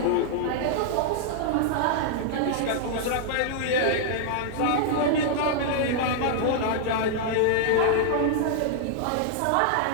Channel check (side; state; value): both; different; correlation -0.01